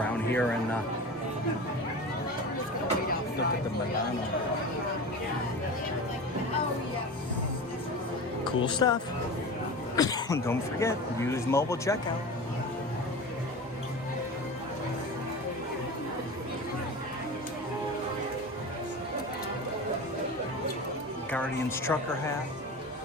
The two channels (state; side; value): normal; both; correlation 0.30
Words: here and look at the Milano. Cool stuff. Don't forget, use mobile checkout. Guardians trucker hat.